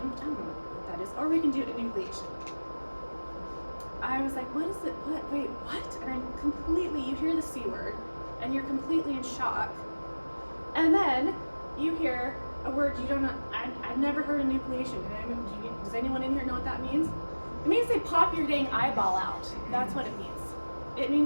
don't know what that is, or we can do enucleation. I was like, what is it? What? Wait, what? And I'm completely, you hear the C word, and you're completely in shock. And then you hear a word you don't know, I've never heard enucleation. Does anyone in here know what that means? It means they pop your dang eyeball out. That's what it means. It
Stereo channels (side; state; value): both; inverted; correlation -1.00